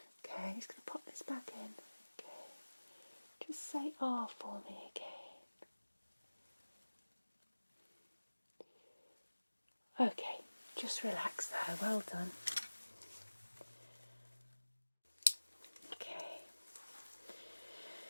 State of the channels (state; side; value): inverted; both; correlation -1.00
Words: Okay, just going to pop this back in. Okay, just say "ah" for me again. Okay, just relax there, well done. Okay,